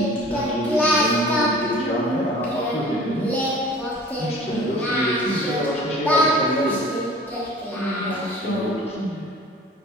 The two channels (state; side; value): normal; both; correlation 0.45